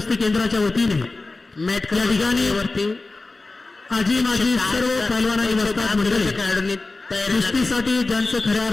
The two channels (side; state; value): right; quieter; 3.4 dB